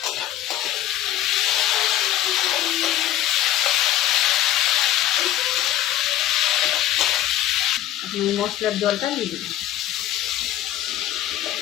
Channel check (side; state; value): right; quieter; 12.9 dB